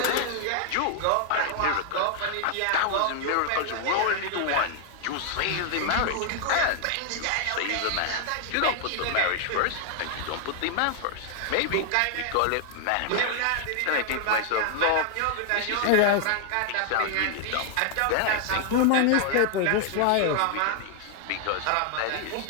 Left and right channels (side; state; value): both; different; correlation 0.00